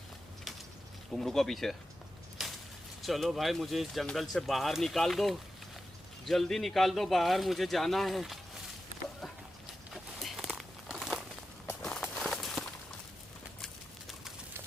तुम रुको पीछे। चलो भाई, मुझे इस जंगल से बाहर निकाल दो, जल्दी निकाल दो बाहर, मुझे जाना है।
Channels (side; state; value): both; normal; correlation 0.91